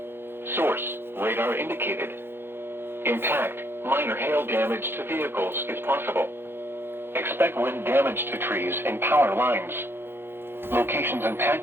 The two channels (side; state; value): left; late; 0.11 ms